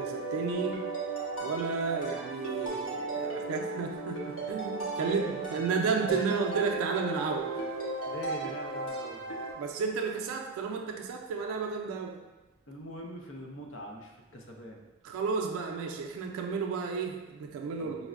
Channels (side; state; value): left; quieter; 4.1 dB